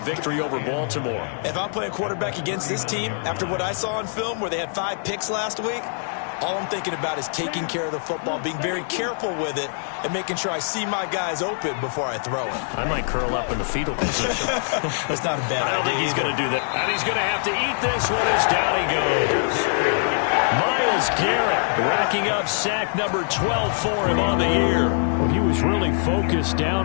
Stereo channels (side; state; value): right; silent; digital silence